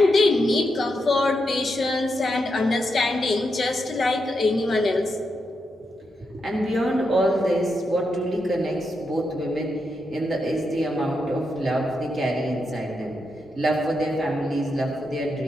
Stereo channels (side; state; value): both; normal; correlation 0.84